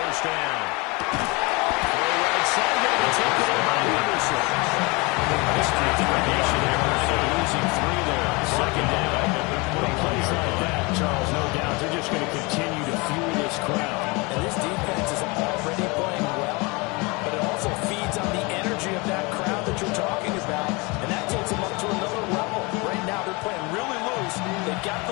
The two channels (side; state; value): right; quieter; 27.0 dB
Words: down. Throw right side, going to take it in by Anderson. Nice determination there, losing 3 there. Second down. With plays like that, Charles, no doubt, they're just going to continue to fuel this crowd. And this defense is already playing well, but it also feeds on the energy of that crowd that you're talking about, and that takes them up to another level. Right now, they're playing really loose. They've got